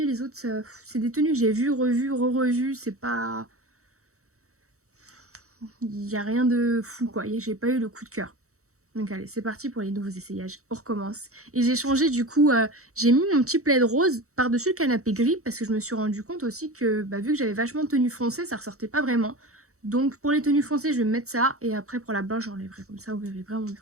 Les autres, c'est des tenues que j'ai vues, revues, re-revues. C'est pas... Il n'y a rien de fou, quoi. J'ai pas eu le coup de cœur. Donc allez, c'est parti pour les nouveaux essayages. On recommence. Et j'ai changé du coup, j'ai mis mon petit plaid rose par-dessus le canapé gris parce que je me suis rendu compte aussi que vu que j'avais vachement de tenues foncées, ça ressortait pas vraiment. Donc pour les tenues foncées, je vais mettre ça et après pour la blanche, j'enlèverai comme ça, vous verrez vraiment,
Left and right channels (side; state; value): left; late; 0.64 ms